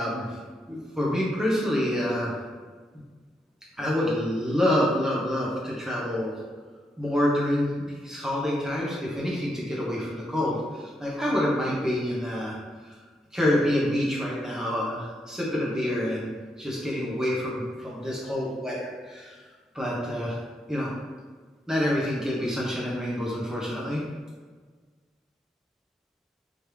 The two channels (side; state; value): both; normal; correlation 0.80